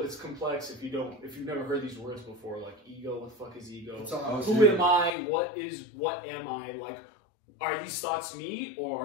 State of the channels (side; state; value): right; drops out; at 5.1 s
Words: it's complex if you've never heard these words before, like ego, what the fuck is ego? Who am I? What am I? Like, are these thoughts me,